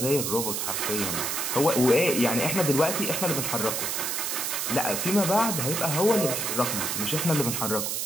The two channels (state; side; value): noise; right; hiss, 1 dB below the sound